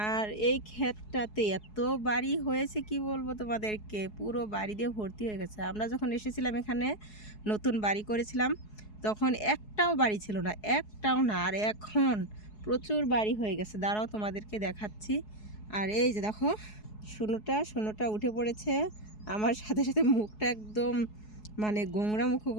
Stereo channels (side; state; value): right; late; 4.7 ms